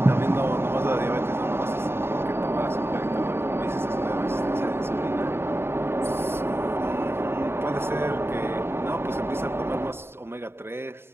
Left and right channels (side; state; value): left; late; 0.11 ms